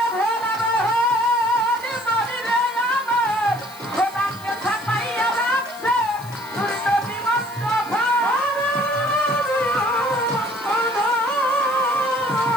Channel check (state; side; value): noise; left; hiss, 20 dB below the sound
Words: ভোলা মোহন মরিরে আমার, খোদাকে ছাপাইয়া রাখছে তোর নবী মুস্তাফা।